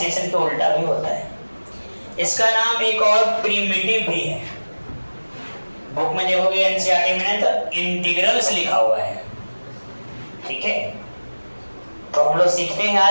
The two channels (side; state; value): both; inverted; correlation -1.00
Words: के उल्टा भी होता है। इसका नाम एक और प्रिमिटिव भी है। बुक में देखोगे एनसीईआरटी में तो इंटीग्रल्स लिखा हुआ है। ठीक है, तो हम लोग सीखते हैं